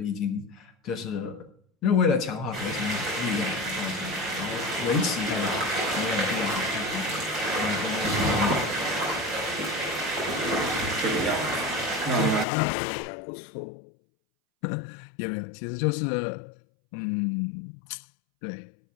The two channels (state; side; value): drops out; right; at 12.5 s